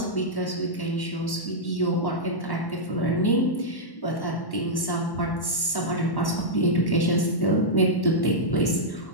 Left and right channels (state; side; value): late; right; 1.1 ms